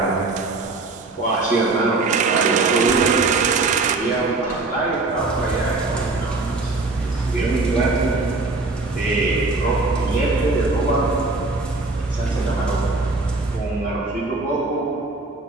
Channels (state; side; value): quieter; left; 3.4 dB